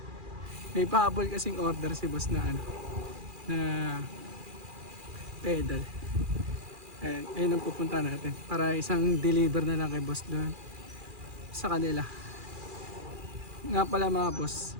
May pahabol kasing order si boss na na pedal. Ayun ang pupunta natin para isang deliver na lang kay boss doon sa kanila. Nga pala mga boss,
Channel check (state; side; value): late; left; 2.4 ms